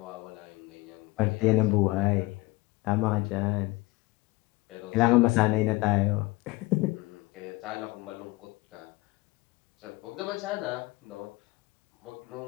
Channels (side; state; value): right; quieter; 22.1 dB